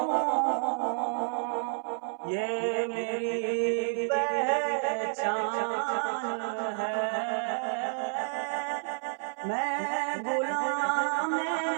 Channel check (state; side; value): silent; left; 57 dB below the other